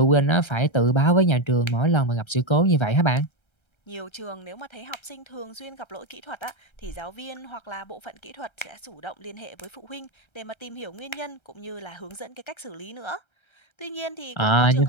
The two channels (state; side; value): late; right; 1.3 ms